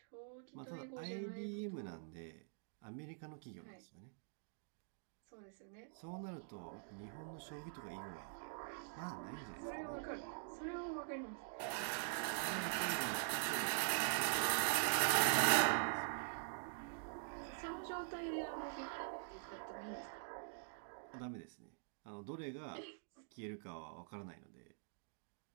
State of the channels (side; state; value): left; silent; digital silence